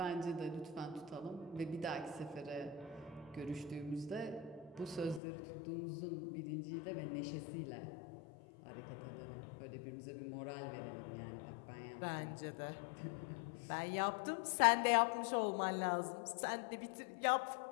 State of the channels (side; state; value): right; drops out; at 5.2 s